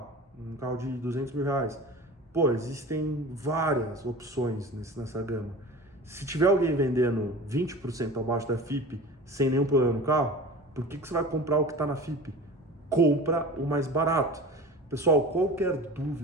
carro de 200 mil reais. Pô, existem várias opções nessa gama. Se tiver alguém vendendo 20% abaixo da FIP sem nenhum problema no carro, por que você vai comprar o que está na FIP? Compra o mais barato. Pessoal, qualquer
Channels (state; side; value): normal; both; correlation 0.36